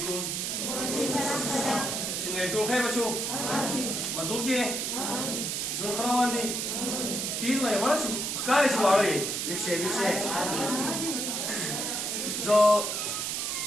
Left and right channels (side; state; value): right; noise; hiss, 1 dB below the sound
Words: څنګه ټول خیر بچو مزو کې جون خروان دي تیز وای وړا شي ښکار شي واړې ویښه زه